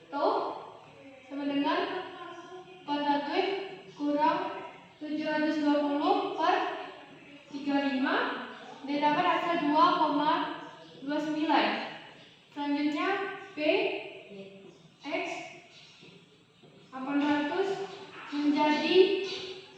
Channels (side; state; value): both; identical; correlation 1.00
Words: tau sama dengan 41 kurang 720 per 35, didapat hasil 2,29. Selanjutnya P X 800 menjadi